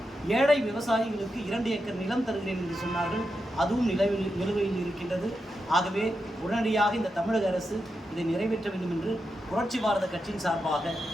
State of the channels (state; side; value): normal; both; correlation 0.87